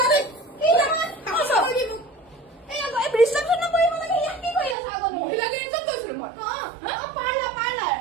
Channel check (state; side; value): drops out; left; at 4.8 s